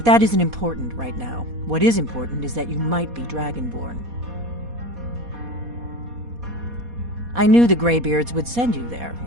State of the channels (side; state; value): left; late; 4.2 ms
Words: that isn't important right now. What is important is that you might be Dragonborn. I knew the Greybeards would send you there